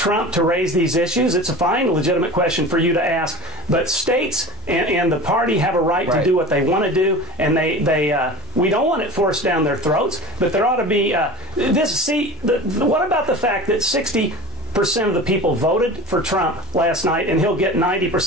to raise these issues. It's a fine, legitimate question for you to ask. But states and the party have a right to do what they want to do, and we don't want it forced down their throats. But there ought to be what about the fact that 60% of the people voted for Trump last night, and he'll get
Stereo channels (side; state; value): both; normal; correlation 0.36